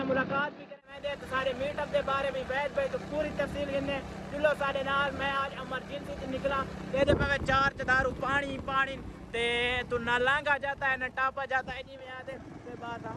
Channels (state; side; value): identical; both; correlation 1.00